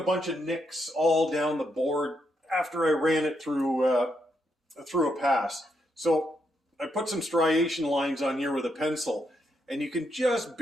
bunch of nicks all down the board after I ran it through a pass. So I put some striation lines on here with a pencil, and you can just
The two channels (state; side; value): normal; both; correlation 0.79